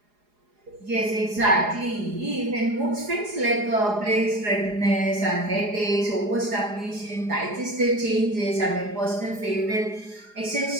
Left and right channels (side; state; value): left; late; 4.8 ms